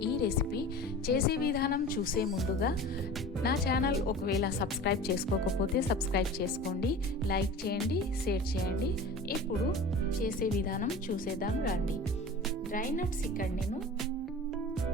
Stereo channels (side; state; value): both; normal; correlation 0.36